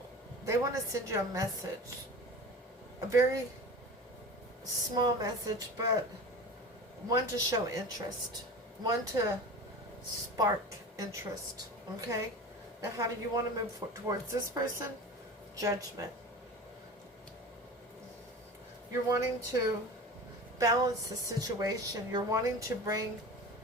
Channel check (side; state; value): both; normal; correlation 0.34